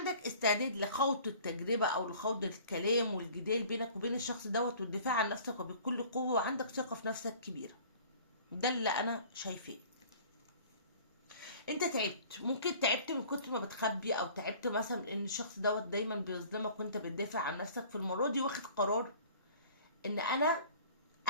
استعداد لخوض التجربة او لخوض الكلام والجدال بينك وبين الشخص دوت والدفاع عن نفسك وبكل قوة، وعندك ثقة في نفسك كبيرة. ده اللي انا شايفاه. انت تعبت، ممكن تعبت من كتر ما بتخبي، او تعبت مثلا ان الشخص دوت دايما بيظلمك وانت بتدافع عن نفسك. في المرة دي واخد قرار ان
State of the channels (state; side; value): inverted; both; correlation -0.48